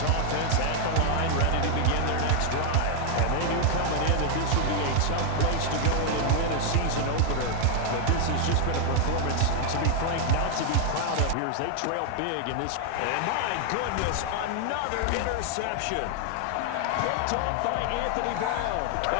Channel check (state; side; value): different; both; correlation 0.00